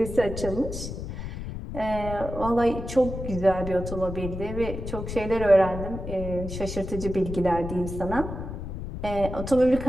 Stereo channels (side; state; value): left; noise; rumble, 7 dB below the sound